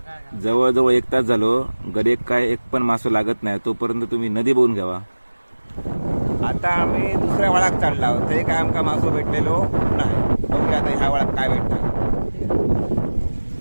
जवळजवळ 1 तास झालो, गरीब काय एक पण मासो लागत नाही. तोपर्यंत तुम्ही नदी बघून घ्यावा. आता आम्ही दुसऱ्या वळात चालला आहोत. ते काय आमका मासो भेटलेलो नाही. बघूया आता ह्या वळात काय भेटतं.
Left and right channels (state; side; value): inverted; both; correlation -1.00